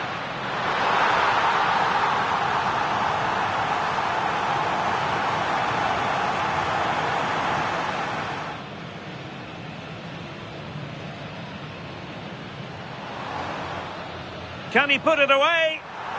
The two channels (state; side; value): identical; both; correlation 1.00